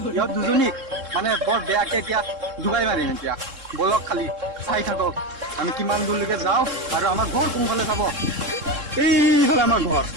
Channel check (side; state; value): left; late; 3.7 ms